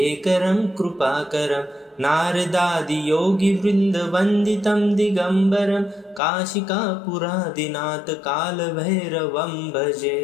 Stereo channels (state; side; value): drops out; right; at 6.2 s